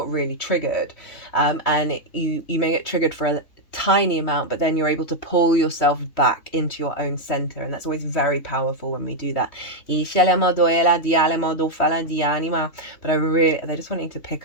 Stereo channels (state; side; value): late; right; 3.1 ms